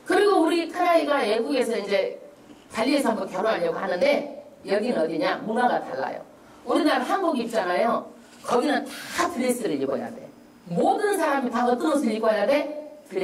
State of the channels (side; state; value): both; identical; correlation 1.00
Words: 그리고 우리 큰아이가 외국에서 이제 발리에서 한번 결혼하려고 하는데 여기는 어디냐? 문화가 달라요. 우리나라 한복 입잖아요. 거기는 다 드레스를 입어야 돼. 모든 사람이 다 어떤 옷을 입어야 돼?